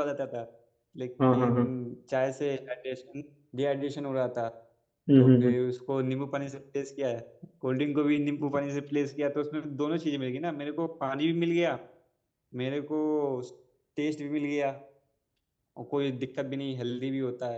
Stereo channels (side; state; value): both; identical; correlation 1.00